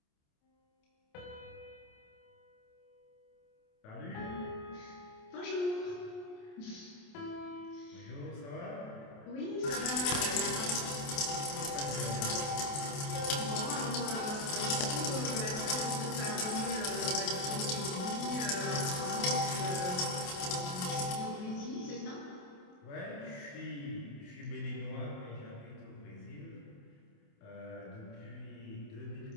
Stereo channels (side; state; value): right; late; 28 ms